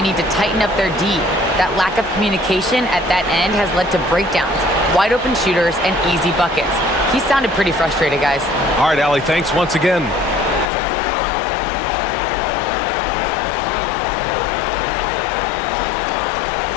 need to tighten up their D. That lack of communication at that end has led to breakdowns, wide open shooters, and easy buckets. He sounded pretty frustrated, guys. All right, Allie, thanks once again.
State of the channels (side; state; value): right; drops out; at 10.7 s